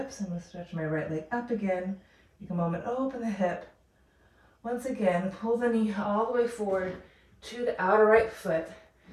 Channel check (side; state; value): both; identical; correlation 1.00